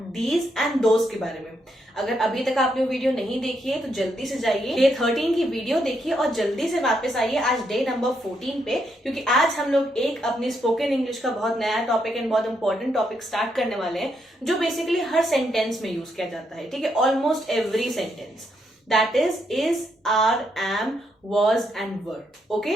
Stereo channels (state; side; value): normal; both; correlation 0.78